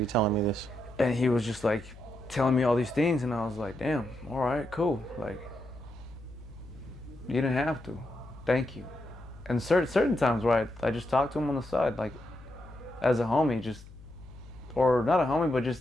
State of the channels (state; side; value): noise; left; hum, 18 dB below the sound